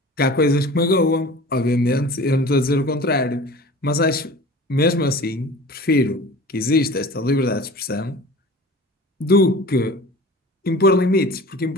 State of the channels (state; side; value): normal; both; correlation 0.40